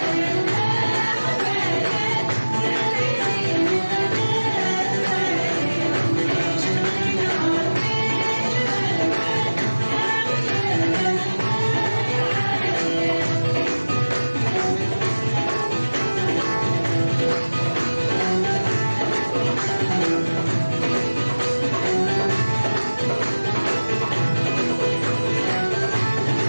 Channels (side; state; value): both; inverted; correlation -1.00